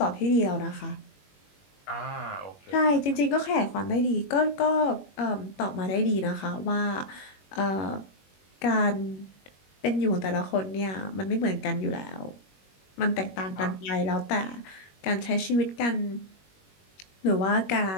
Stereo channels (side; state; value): right; late; 21 ms